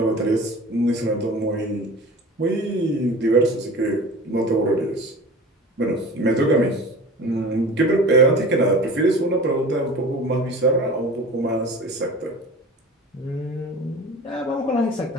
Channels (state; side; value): normal; both; correlation 0.39